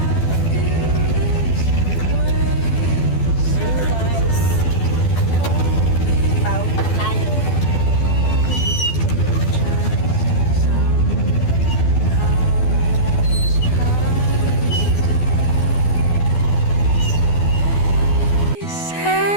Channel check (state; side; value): late; right; 12 ms